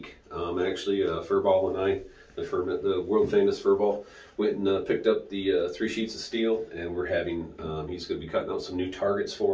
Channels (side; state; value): both; identical; correlation 1.00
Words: Actually, Furball and I, the world famous Furball, went and picked up the 3 sheets of steel, and we're having, he's going to be cutting out some new targets